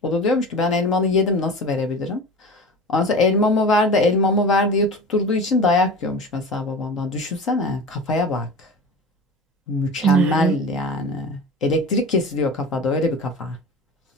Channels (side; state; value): both; normal; correlation 0.34